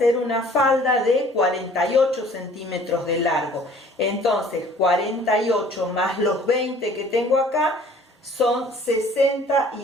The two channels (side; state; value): both; normal; correlation 0.53